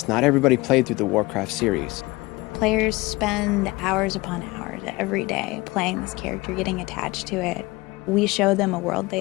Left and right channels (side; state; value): right; quieter; 22.3 dB